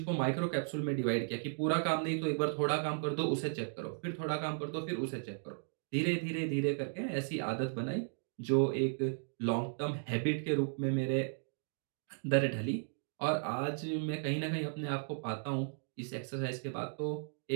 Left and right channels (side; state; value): left; silent; digital silence